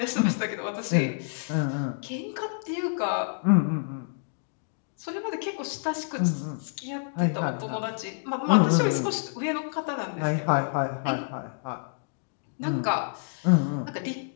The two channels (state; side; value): silent; right; digital silence